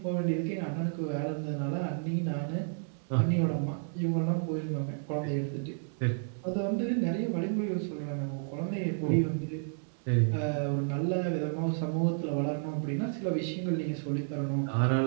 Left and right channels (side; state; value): left; silent; digital silence